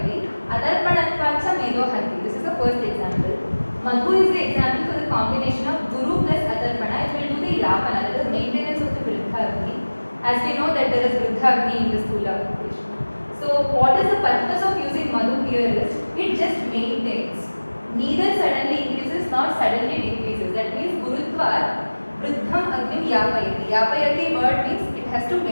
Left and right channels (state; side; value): inverted; both; correlation -1.00